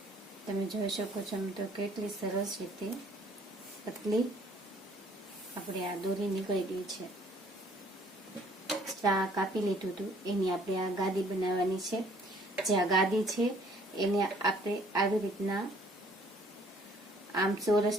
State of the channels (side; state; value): both; normal; correlation 0.59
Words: તમે જોઈ શકો છો તો કેટલી સરસ રીતે પતલી આપણે આ દોરી નીકળી ગઈ છે। આ કાપી લીધું હતું એની આપણે આ ગાદી બનાવવાની છે। જે આ ગાદી છે એને આપણે આવી રીતના આમ